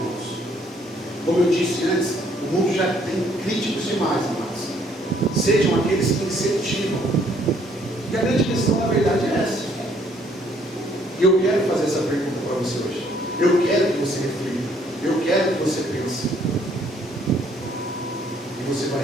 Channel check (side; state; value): both; normal; correlation 0.65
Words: Como eu disse antes, o mundo já tem críticos demais, amados. Sejam aqueles que incentivam. E a grande questão, na verdade, é essa. E eu quero fazer essa pergunta para você hoje. Eu quero que você reflita. Eu quero que você pense. E você